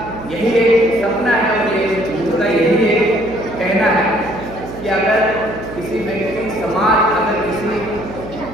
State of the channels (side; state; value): right; noise; hum, 13 dB below the sound